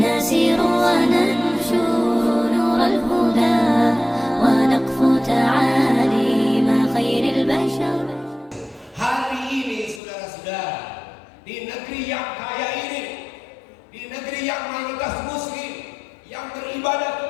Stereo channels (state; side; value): drops out; right; at 10.0 s